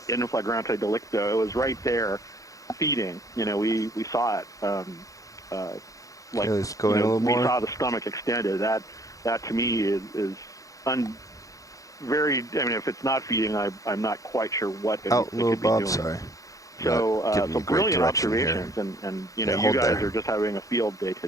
in flagrante delicto. It was right there feeding. We saw it. We saw the stomach extended. That to me is if it's not feeding, I'm not quite sure what it could be doing. Sorry. So brilliant observations, and you guys are just having a field day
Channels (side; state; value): right; late; 0.16 ms